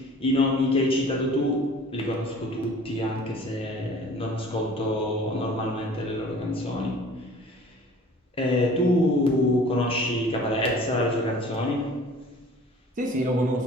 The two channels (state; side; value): normal; both; correlation 0.47